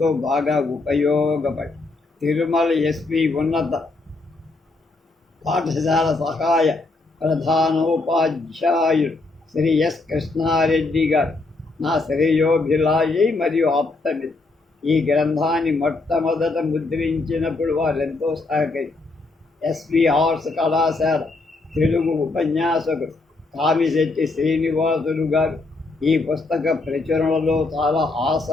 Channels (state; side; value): quieter; right; 3.4 dB